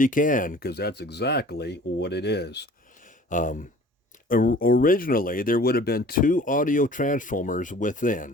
can, because that's exactly what it is. Originally, there would have been two audio transformers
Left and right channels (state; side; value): normal; both; correlation 0.48